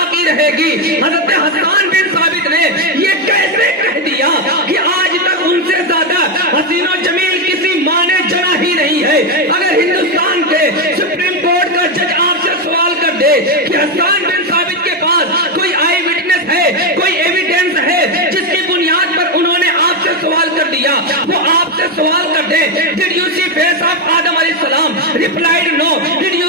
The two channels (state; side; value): normal; both; correlation 0.08